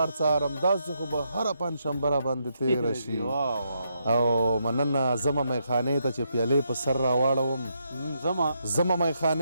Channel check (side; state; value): both; inverted; correlation -0.79